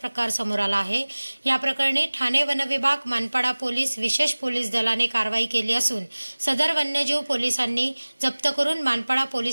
प्रकार समोर आला आहे। या प्रकरणी ठाणे वनविभाग, मानपाडा पोलीस, विशेष पोलीस दलाने कारवाई केली असून सदर वन्यजीव पोलिसांनी जप्त करून मानपाडा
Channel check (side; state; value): both; inverted; correlation -1.00